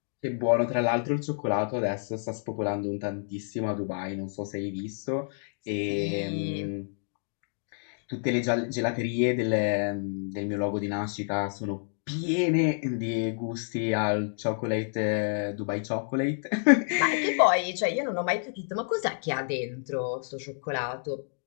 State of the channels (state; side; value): silent; right; digital silence